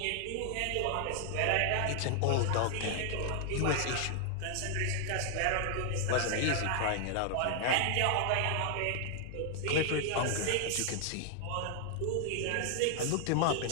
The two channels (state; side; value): different; both; correlation 0.00